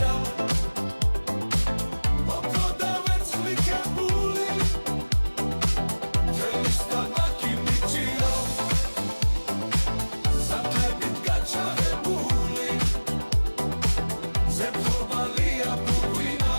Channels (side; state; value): both; inverted; correlation -1.00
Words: მოპროდა ვერცხლიკებული თელის ტაბაკი მიჭირა სანტებით გაჩაღებული ზეთხოვალია პუკვია